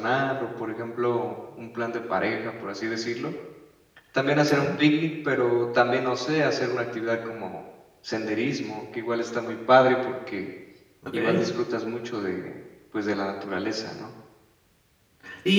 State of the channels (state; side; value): identical; both; correlation 1.00